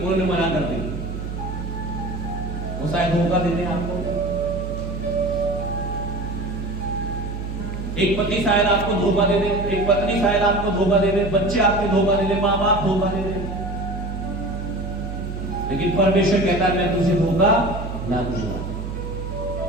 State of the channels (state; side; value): noise; right; hum, 6 dB below the sound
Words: मना कर दी। वो शायद धोखा दे दें आपको। एक पति शायद आपको धोखा दे दे, एक पत्नी शायद आपको धोखा दे दे, बच्चे आपके धोखा दे दे, माँ बाप धोखा दे दे। लेकिन परमेश्वर कहता है मैं तुझे धोखा ना दूंगा।